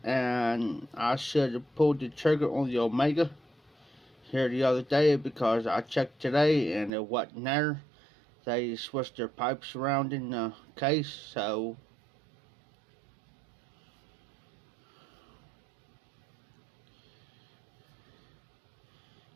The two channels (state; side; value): drops out; left; at 6.9 s